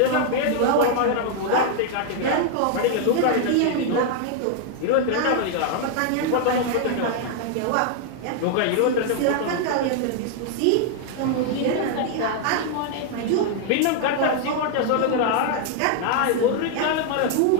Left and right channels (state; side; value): different; both; correlation 0.00